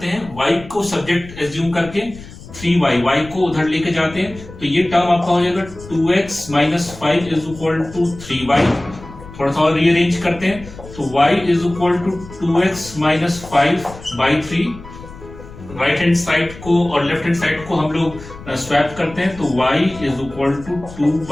हैं, y को subject assume करके 3y, y को उधर लेके जाते हैं, तो ये टर्म आपका हो जाएगा 2x minus 5 is equal to 3y। थोड़ा सा और रीअरेंज करते हैं, तो y is equal to 2x minus 5 by 3। Right hand side को और लेफ्ट हैंड साइड को हम लोग स्वैप करते हैं, तो y is equal to 2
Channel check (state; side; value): noise; left; rumble, 17 dB below the sound